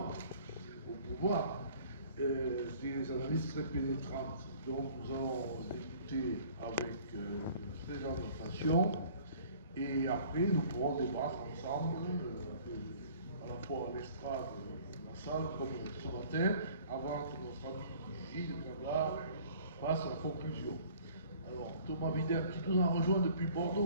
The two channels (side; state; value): both; inverted; correlation -0.52